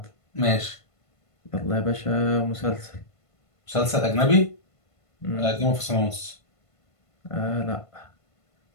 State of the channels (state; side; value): late; right; 1.5 ms